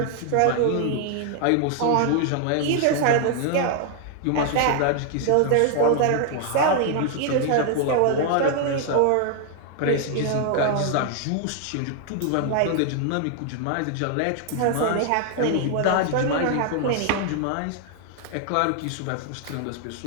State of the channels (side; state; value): both; different; correlation 0.00